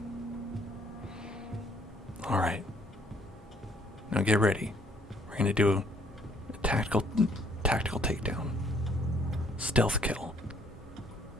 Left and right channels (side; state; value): both; normal; correlation 0.64